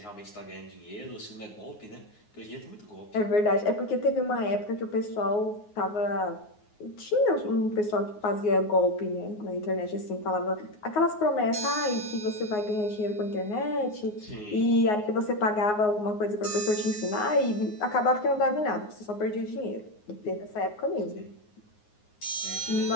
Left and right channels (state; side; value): late; right; 9.5 ms